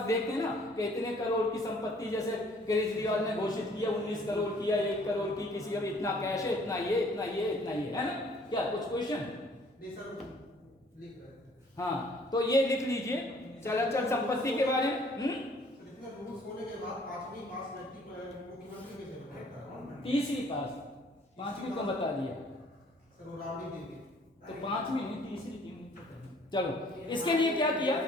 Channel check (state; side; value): normal; both; correlation 0.58